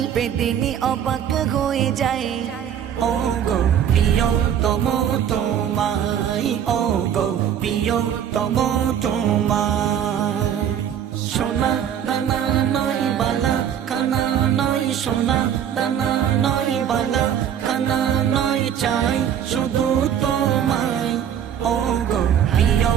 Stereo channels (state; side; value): quieter; left; 9.3 dB